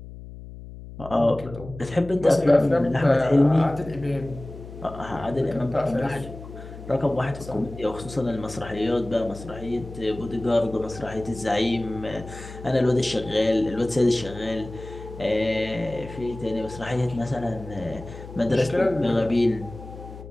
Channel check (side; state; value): left; noise; hum, 14 dB below the sound